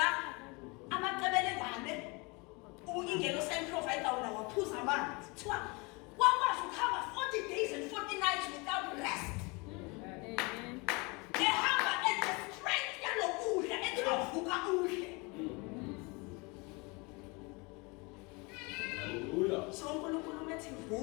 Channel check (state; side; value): quieter; right; 28.0 dB